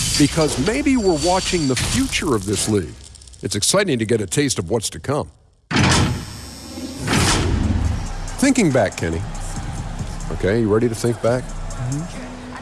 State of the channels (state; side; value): identical; both; correlation 1.00